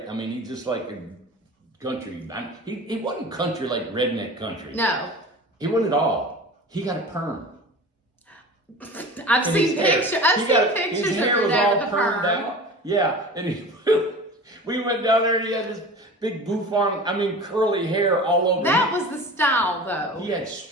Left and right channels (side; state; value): both; normal; correlation 0.36